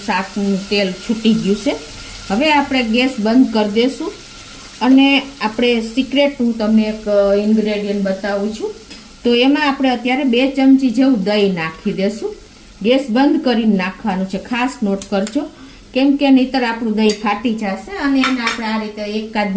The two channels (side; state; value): both; identical; correlation 1.00